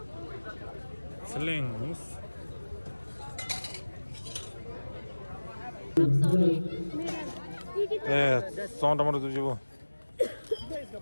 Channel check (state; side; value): inverted; both; correlation -1.00